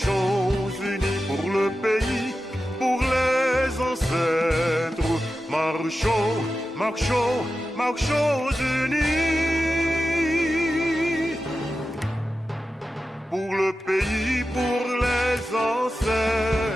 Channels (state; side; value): normal; both; correlation 0.92